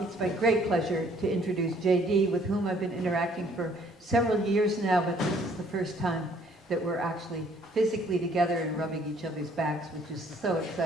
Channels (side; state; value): both; normal; correlation 0.61